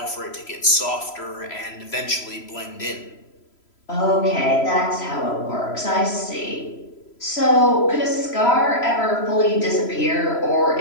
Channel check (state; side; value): late; right; 3.0 ms